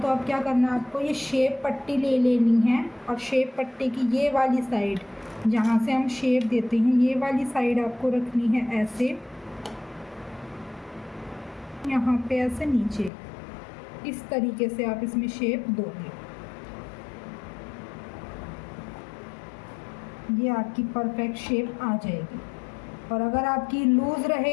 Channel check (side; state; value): right; drops out; at 13.1 s